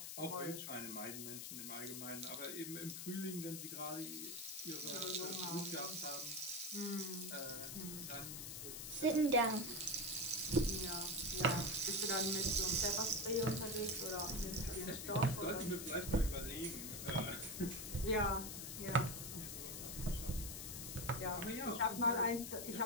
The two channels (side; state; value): left; noise; hiss, 6 dB below the sound